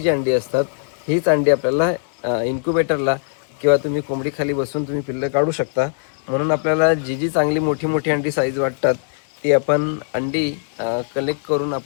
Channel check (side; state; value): right; silent; digital silence